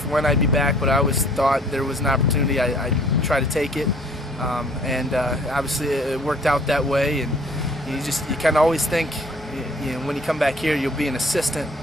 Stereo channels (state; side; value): normal; both; correlation 0.56